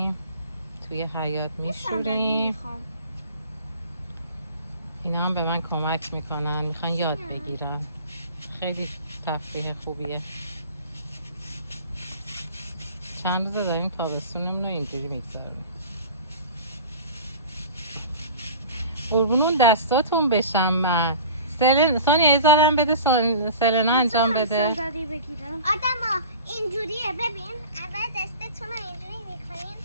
توی حیاط میشوریم. اینا هم به من کمک میکنن، میخوان یاد بگیرن. خیلی تفریح خوبیه. چند روزه داریم تابستونمون رو اینجوری میگذاریم. قربونون دستاتون بشم من. سونیا یه ذرم بده سلنا انجام بده. آدما اینجوریه، ببین اول دستتون رو اینجوری میکنین،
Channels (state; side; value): inverted; both; correlation -0.40